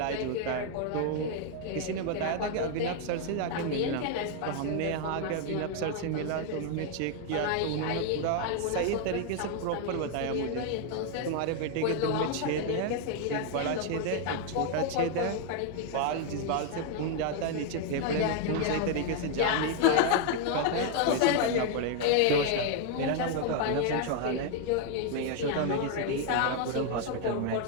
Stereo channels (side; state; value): both; different; correlation 0.00